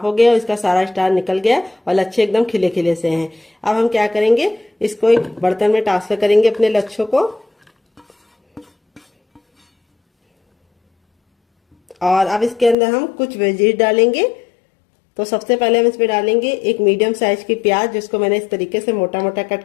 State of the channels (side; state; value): right; drops out; at 12.8 s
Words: हो गए और इसका सारा स्टार्च निकल गया और लच्छे एकदम खिले खिले से हैं। अब हम क्या करेंगे, इसको एक बर्तन में ट्रांसफर करेंगे अपने लच्छों को। और अब इसके अंदर हम कुछ वेजीज डालेंगे। तो सबसे पहले हम इसमें डालेंगे एक मीडियम साइज की प्याज, जिसको मैंने इस तरीके से मोटा मोटा कट